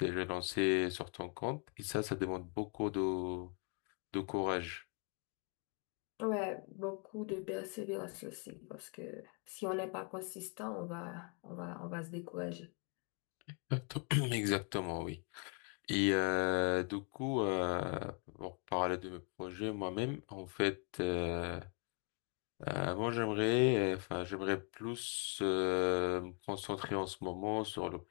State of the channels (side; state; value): right; quieter; 38.0 dB